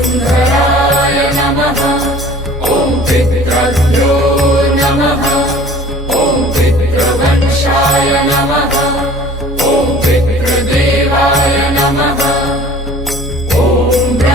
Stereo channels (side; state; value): both; normal; correlation 0.48